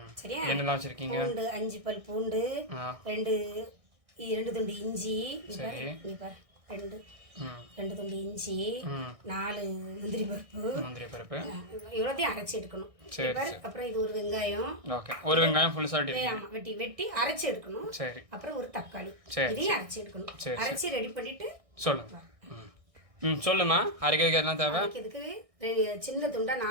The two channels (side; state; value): left; late; 1.6 ms